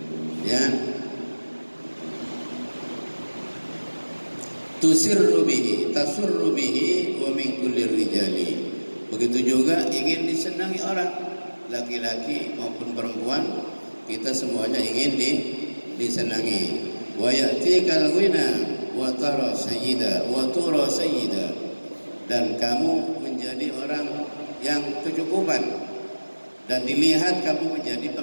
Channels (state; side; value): inverted; both; correlation -1.00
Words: ya. Tusirru bihi, tasurru bihi wa min kulli rijali. Begitu juga ingin disenangi orang, laki-laki maupun perempuan, kita semuanya ingin disenangi. Wa ya'tikal ghina wa tara sayyida wa tura sayyida, dan kamu menjadi orang yang kecukupan dan dilihat kamu menjadi